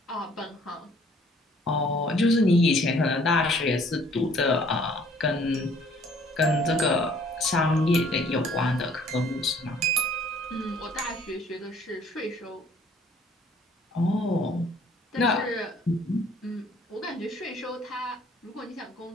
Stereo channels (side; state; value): both; normal; correlation 0.58